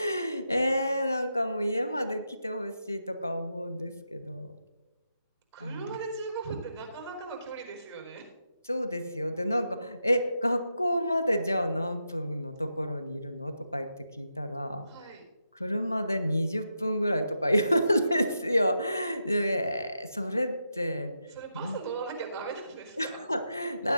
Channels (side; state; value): both; inverted; correlation -0.85